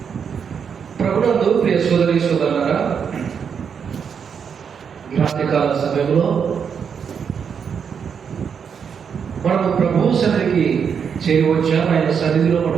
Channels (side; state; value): left; quieter; 6.9 dB